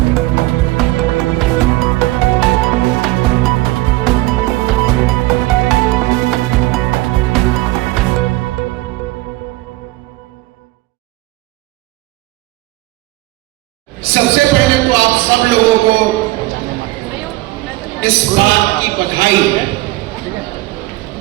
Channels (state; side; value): quieter; left; 19.5 dB